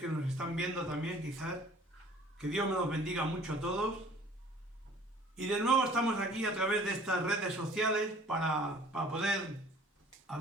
nos están viendo también, quizás. Que Dios me los bendiga mucho a todos. Y de nuevo estamos aquí a través de estas redes sociales para poder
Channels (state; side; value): normal; both; correlation 0.52